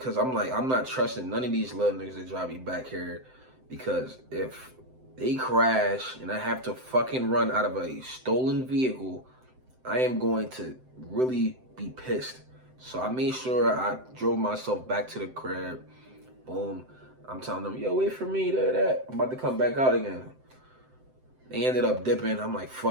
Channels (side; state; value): left; late; 7.8 ms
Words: I'm like, I'm not trusting none of these little niggas to drive me back here, because if they crash and I have to fucking run out of a stolen vehicle, I am going to really be pissed. So I made sure I drove myself back to the crib. Boom. I'm telling them, yo, wait for me, that. I'm about to come back out again. They ended up dipping. I'm like,